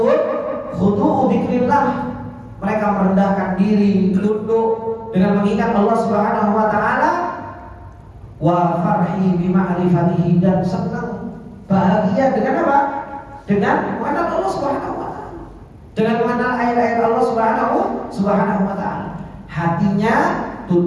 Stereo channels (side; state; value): both; identical; correlation 1.00